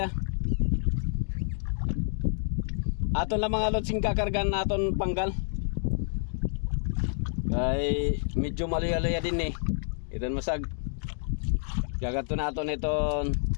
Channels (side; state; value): right; silent; digital silence